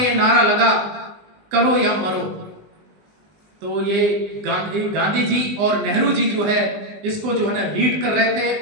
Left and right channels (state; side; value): late; left; 20 ms